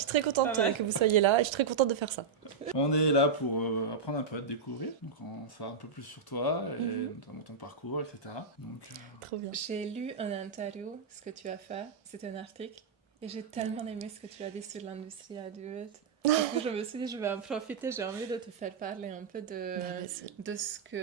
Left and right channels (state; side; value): quieter; left; 5.5 dB